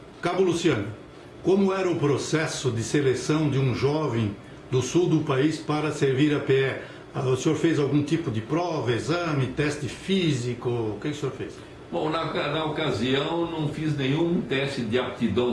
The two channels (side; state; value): both; identical; correlation 1.00